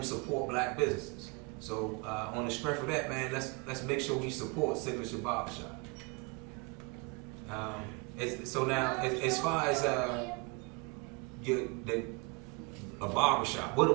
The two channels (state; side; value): quieter; left; 30.1 dB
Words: support black businesses. So on the strength of that, man, let's make sure we support Signature Barbershop. So now, as far as a barbershop, what